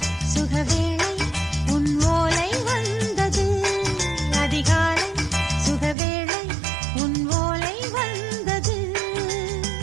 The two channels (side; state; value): left; drops out; at 6.0 s